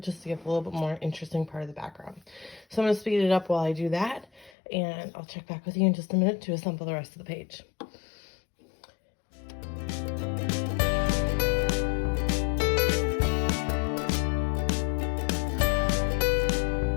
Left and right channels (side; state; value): right; drops out; at 4.5 s